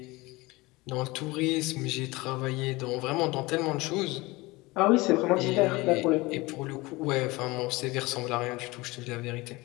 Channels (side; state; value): right; quieter; 22.3 dB